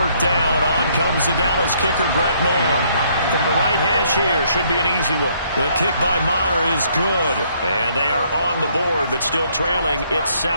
down, on comes the Dallas kicker, Brett Maher. From the right hash here, should be an easy one. The kick by Maher is good. And they are on the board, but still trailing. It's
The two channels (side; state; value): both; inverted; correlation -0.67